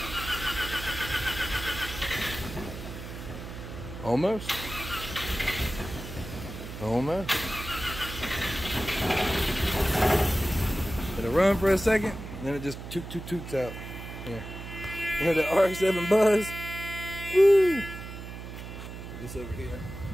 Almost. Almost. It'll run for a second, and then it just toots out. Here. You hear the Rx7 buzz? Woo! Put this over here.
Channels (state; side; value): noise; right; hum, 10 dB below the sound